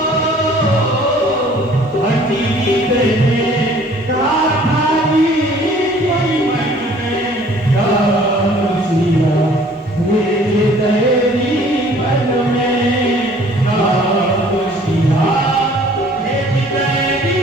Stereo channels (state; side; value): normal; both; correlation 0.54